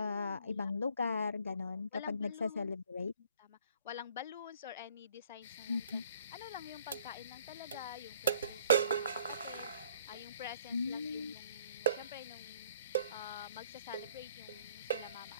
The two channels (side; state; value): both; inverted; correlation -0.59